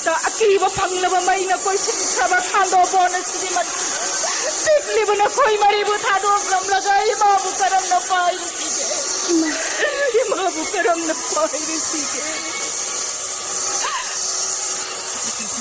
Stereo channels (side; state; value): both; identical; correlation 1.00